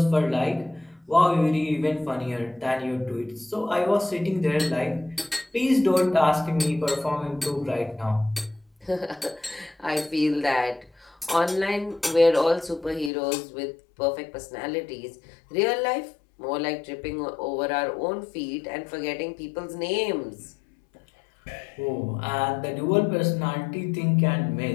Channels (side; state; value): right; drops out; at 13.1 s